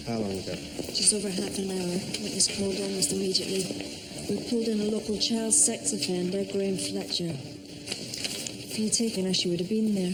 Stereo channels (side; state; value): both; identical; correlation 1.00